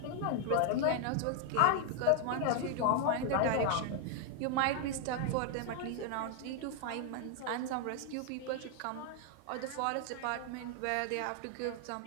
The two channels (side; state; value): both; different; correlation 0.00